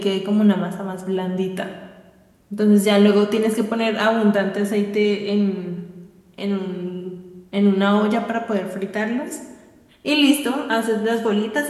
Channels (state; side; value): identical; both; correlation 1.00